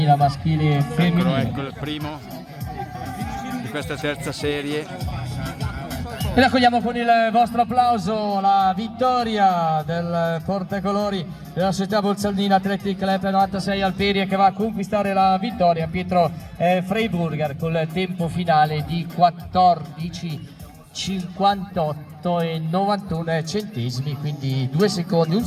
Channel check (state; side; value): identical; both; correlation 1.00